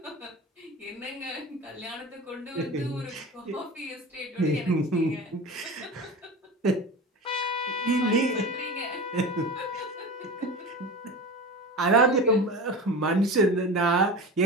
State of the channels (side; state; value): both; normal; correlation 0.31